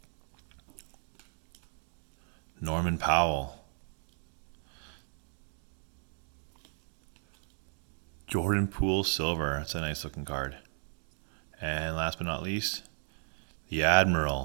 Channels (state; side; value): silent; left; 55 dB below the other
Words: Norman Powell. Jordan Poole Silver. That's a nice looking card. And last but not least, the